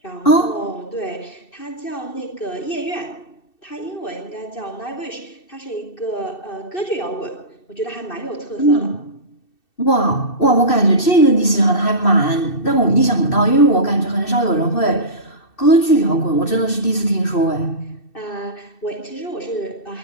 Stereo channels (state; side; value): late; right; 2.6 ms